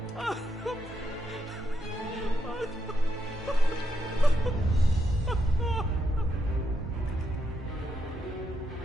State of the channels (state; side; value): normal; both; correlation 0.81